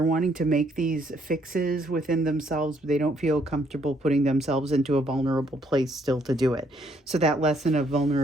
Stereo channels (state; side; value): normal; both; correlation 0.69